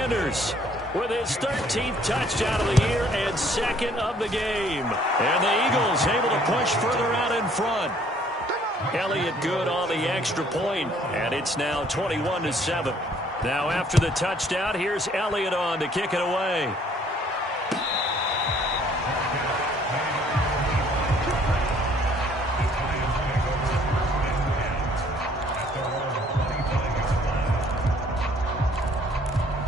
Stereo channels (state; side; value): normal; both; correlation 0.60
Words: with his 13th touchdown of the year and 2nd of the game. And the Eagles able to push further out in front. Elliott good on the extra point, and it's now 21-7. Now after the touchdown, here's Elliott on to kick it away.